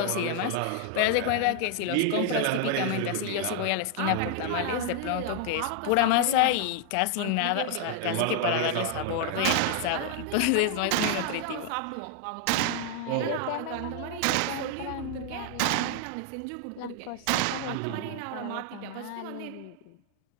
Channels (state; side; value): different; both; correlation 0.00